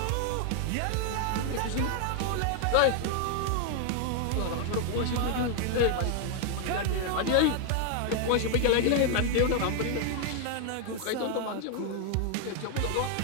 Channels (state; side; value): different; both; correlation 0.00